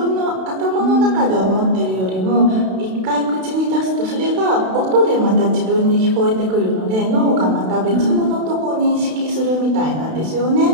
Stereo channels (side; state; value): left; late; 32 ms